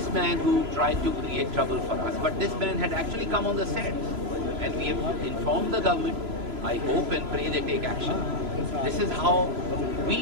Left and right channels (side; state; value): left; late; 3.0 ms